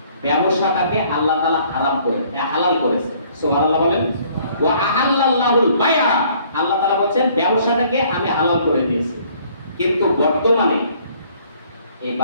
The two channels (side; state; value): both; inverted; correlation -0.60